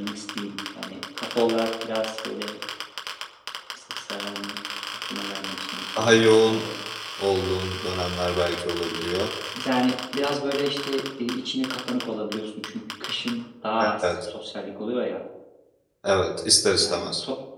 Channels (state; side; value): identical; both; correlation 1.00